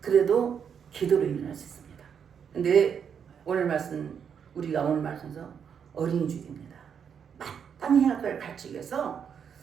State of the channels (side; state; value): left; quieter; 7.5 dB